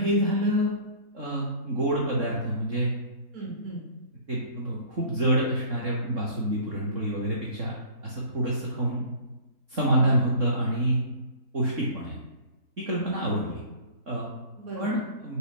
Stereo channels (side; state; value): left; late; 3.6 ms